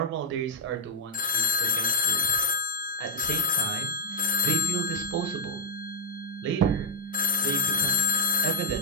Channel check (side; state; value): both; normal; correlation 0.02